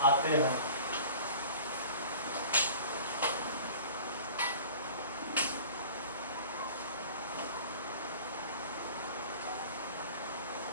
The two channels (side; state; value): both; inverted; correlation -0.44